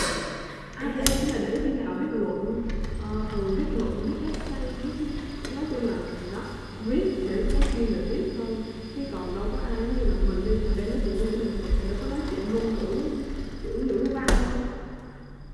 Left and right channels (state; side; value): identical; both; correlation 1.00